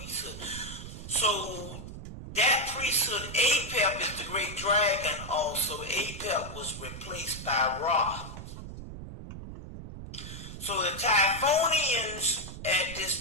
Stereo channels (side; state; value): right; noise; rumble, 11 dB below the sound